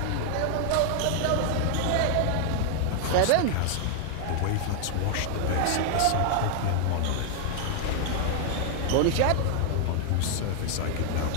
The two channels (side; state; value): both; different; correlation 0.00